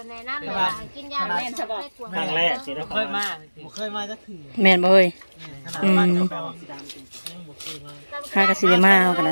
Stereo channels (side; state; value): both; inverted; correlation -1.00